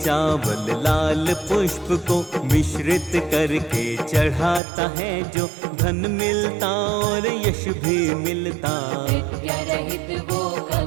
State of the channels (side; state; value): left; drops out; at 4.6 s